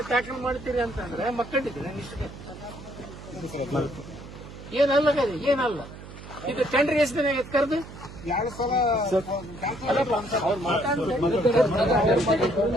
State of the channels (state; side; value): noise; right; hum, 15 dB below the sound